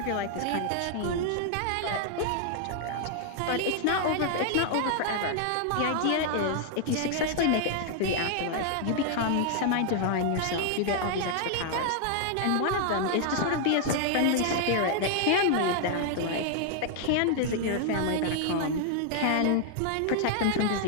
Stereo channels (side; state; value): both; different; correlation 0.00